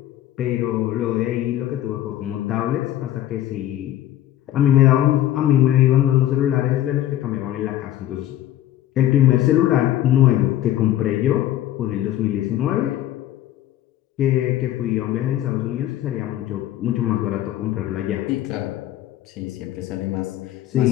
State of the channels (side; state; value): right; quieter; 13.0 dB